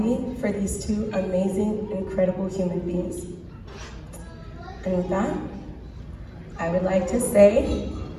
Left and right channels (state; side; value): identical; both; correlation 1.00